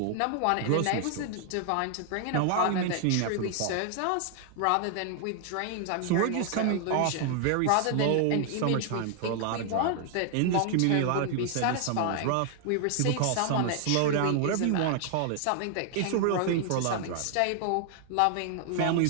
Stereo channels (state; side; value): different; both; correlation 0.00